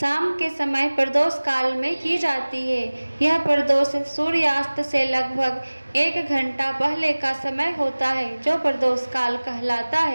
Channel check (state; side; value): inverted; both; correlation -1.00